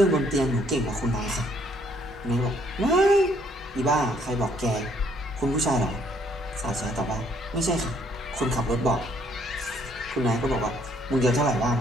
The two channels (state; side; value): normal; both; correlation 0.65